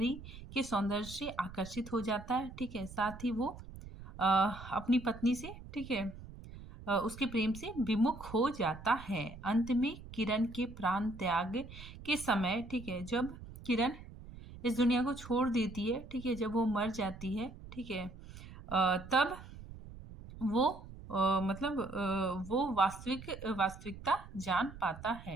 के सौंदर्य से आकर्षित हो जाता है। ठीक है, साथ ही वो अपनी पत्नी से, ठीक है, उसके प्रेम से विमुख हो जाता है। अंत में किरण के प्राण त्याग के समय, ठीक है, जब किरण इस दुनिया को छोड़ देती है, ठीक है, जब वो मर जाती है, ठीक है, तब वो वो वास्तविकता जान पाता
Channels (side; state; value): right; noise; rumble, 15 dB below the sound